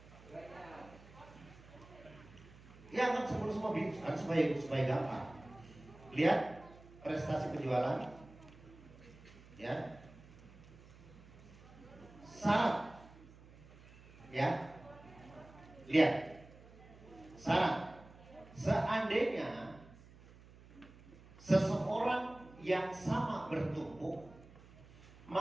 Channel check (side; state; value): right; noise; hum, 21 dB below the sound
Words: Ya anggap semua kan supaya gampang. Lihat prestasi penjualan, ya, syarat, ya, lihat syarat. Seandainya seseorang yang sama bertumpuk,